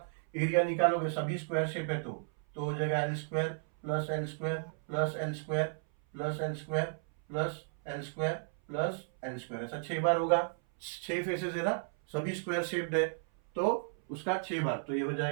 एरिया निकालोगे, सभी स्क्वायर शेप है, तो हो जाएगा L square plus L square plus L square plus L square plus L square plus L square, ऐसा 6 बार होगा, 6 फेसेस है ना, सभी स्क्वायर शेप्ड है, तो उसका 6 बार, तो ये हो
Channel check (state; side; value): silent; left; 55 dB below the other